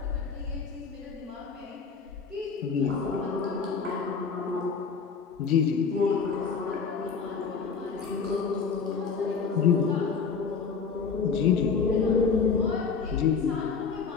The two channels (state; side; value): quieter; right; 5.6 dB